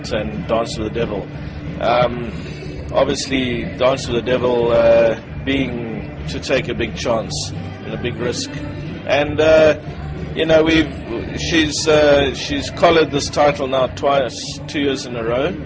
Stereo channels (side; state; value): both; identical; correlation 1.00